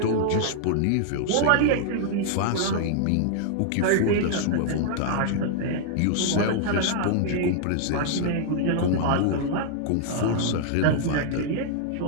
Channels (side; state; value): both; different; correlation -0.01